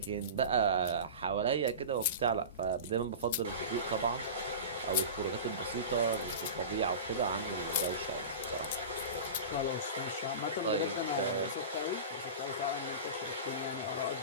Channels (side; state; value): both; inverted; correlation -0.30